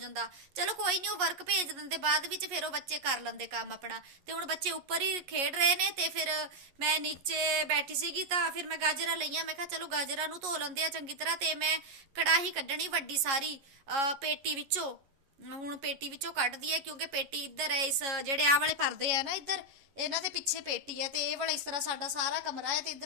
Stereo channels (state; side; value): late; left; 11 ms